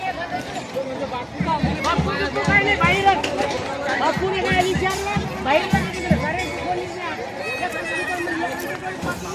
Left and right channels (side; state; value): both; identical; correlation 1.00